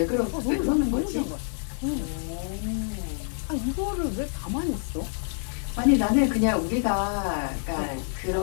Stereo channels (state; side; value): silent; right; digital silence